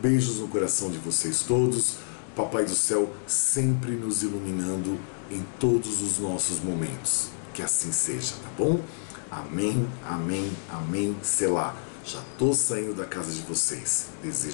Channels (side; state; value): right; silent; digital silence